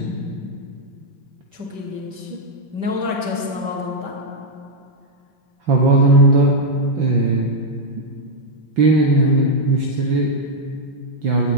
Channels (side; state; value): left; late; 5.2 ms